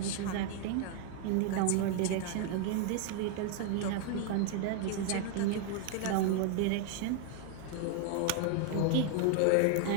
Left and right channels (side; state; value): both; different; correlation 0.00